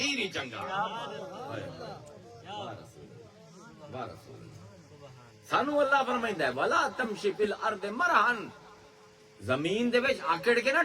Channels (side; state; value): both; identical; correlation 1.00